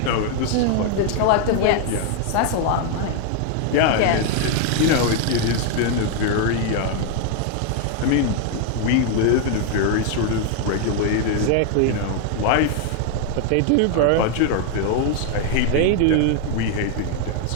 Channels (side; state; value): both; different; correlation 0.01